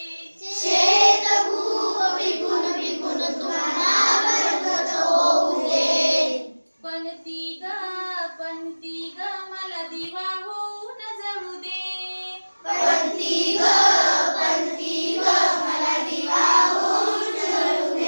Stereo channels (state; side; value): inverted; both; correlation -1.00